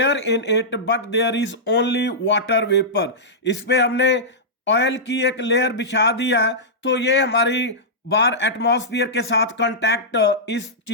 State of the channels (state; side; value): normal; both; correlation -0.13